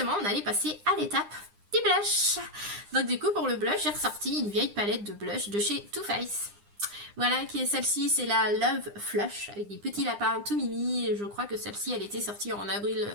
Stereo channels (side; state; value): left; late; 9.8 ms